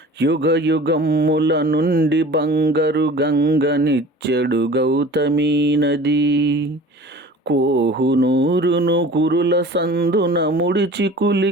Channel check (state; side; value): normal; both; correlation 0.42